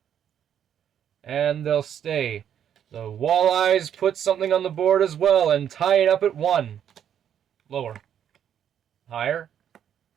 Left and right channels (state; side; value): quieter; left; 9.3 dB